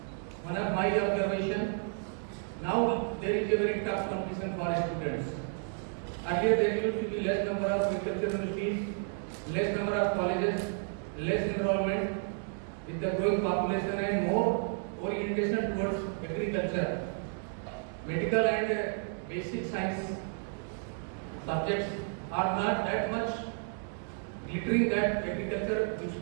my observation, now there is a very tough competition for students. Earlier there used to be less number of agricultural universities, less number of colleges, less enrollment. With the growing population and more orientation towards agriculture, medical and basic science subjects are not that much glittering that agriculture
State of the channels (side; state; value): left; silent; 56 dB below the other